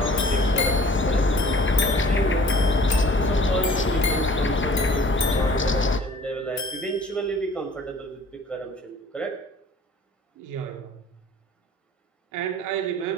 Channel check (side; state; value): both; normal; correlation 0.50